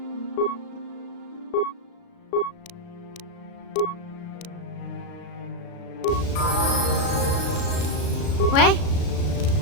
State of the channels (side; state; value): right; late; 36 ms